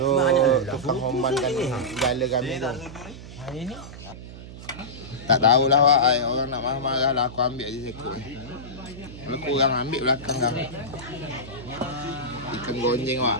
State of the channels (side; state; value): right; noise; hum, 14 dB below the sound